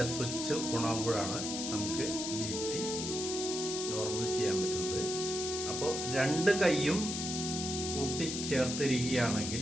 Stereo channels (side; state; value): left; noise; hiss, 4 dB below the sound